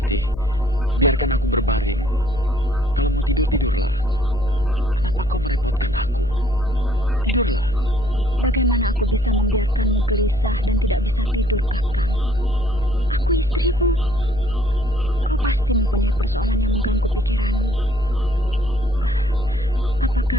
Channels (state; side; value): noise; left; hum, 12 dB below the sound